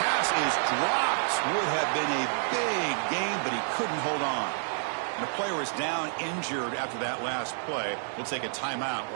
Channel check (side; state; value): left; silent; 59 dB below the other